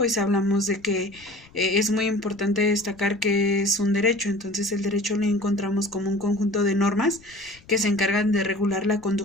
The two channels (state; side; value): noise; left; rumble, 26 dB below the sound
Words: hablamos de que es muy importante destacar que es un derecho. Entonces, el derecho lo encontramos como un conjunto de normas que se encargan de regular la